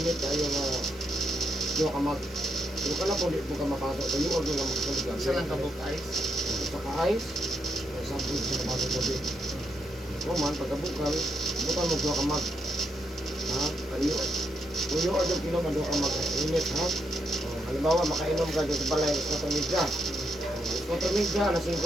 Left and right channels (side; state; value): both; normal; correlation 0.79